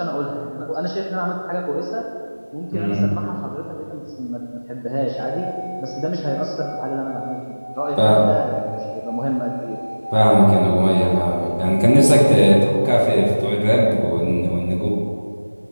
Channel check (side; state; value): both; inverted; correlation -1.00